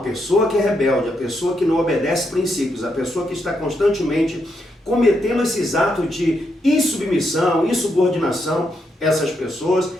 pessoa que é rebelde, a pessoa que não obedece princípios, a pessoa que está constantemente cometendo esses atos de insubmissão, insubordinação, essas pessoas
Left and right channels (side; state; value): both; normal; correlation 0.80